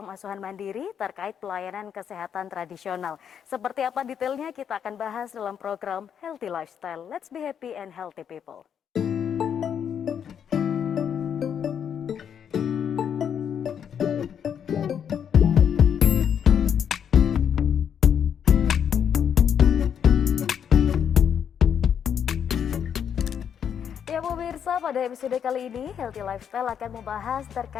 asuhan mandiri terkait pelayanan kesehatan tradisional. Seperti apa detailnya kita akan bahas dalam program Healthy Lifestyle. Let's be happy and healthy people. Ya pemirsa, pada episode kali ini Healthy Lifestyle akan membahas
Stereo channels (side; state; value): right; quieter; 8.2 dB